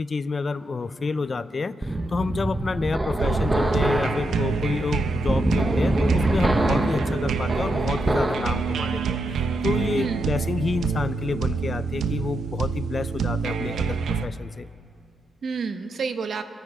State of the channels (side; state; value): both; normal; correlation 0.81